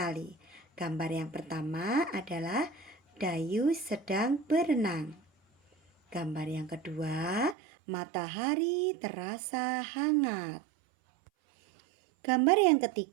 Gambar yang pertama adalah Dayu sedang berenang. Gambar yang kedua, matahari terasa hangat. Gambar yang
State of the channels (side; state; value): left; drops out; at 7.6 s